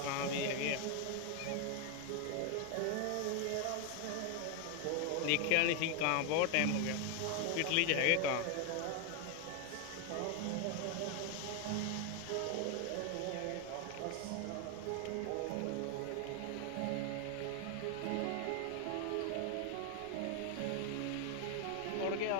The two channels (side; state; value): both; different; correlation 0.01